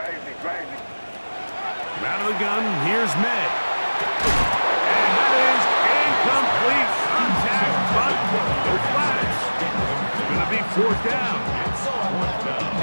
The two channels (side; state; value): both; inverted; correlation -1.00